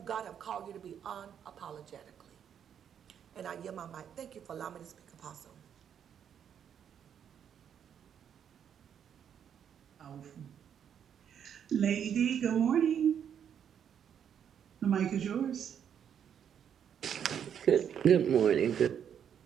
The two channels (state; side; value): quieter; left; 8.6 dB